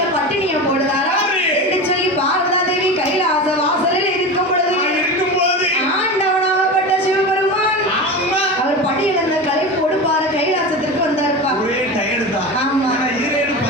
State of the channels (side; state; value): both; normal; correlation 0.26